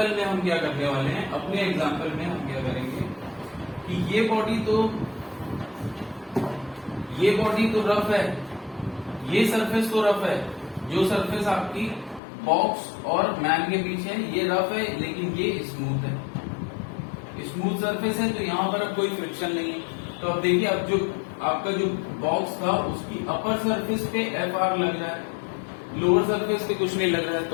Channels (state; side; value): drops out; right; at 12.2 s